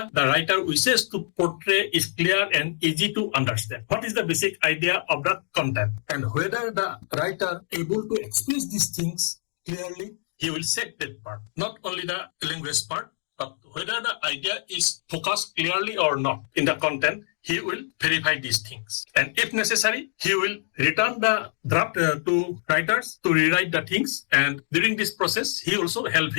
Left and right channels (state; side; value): silent; right; digital silence